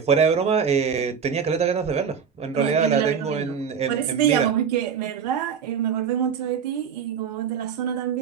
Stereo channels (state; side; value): quieter; left; 7.1 dB